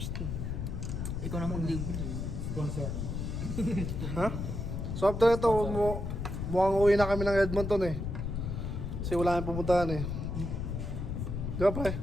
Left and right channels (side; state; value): left; noise; rumble, 3 dB below the sound